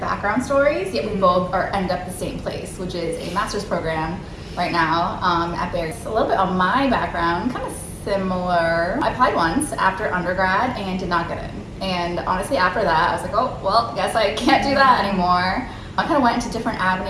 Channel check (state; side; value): identical; both; correlation 1.00